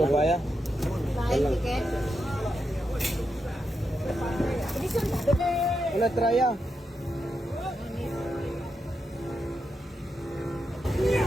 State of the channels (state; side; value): normal; both; correlation 0.85